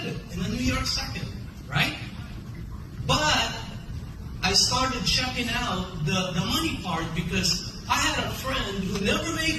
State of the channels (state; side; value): identical; both; correlation 1.00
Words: it in the New York Second, right? But I started checking out the money part because I had a friend who never